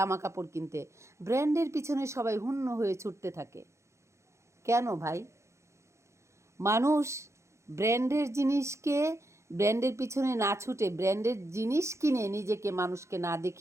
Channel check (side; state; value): left; late; 0.14 ms